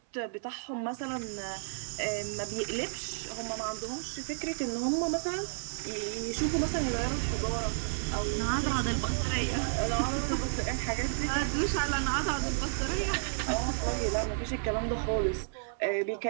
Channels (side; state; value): left; silent; digital silence